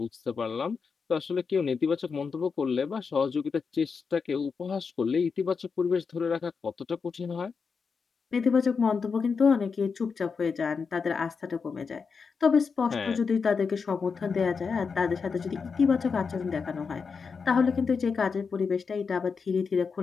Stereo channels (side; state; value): right; quieter; 5.4 dB